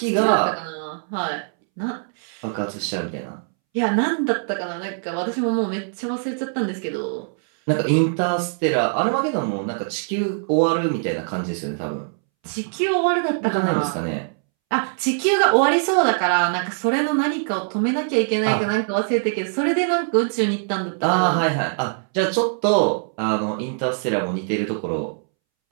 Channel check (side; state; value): left; silent; 64 dB below the other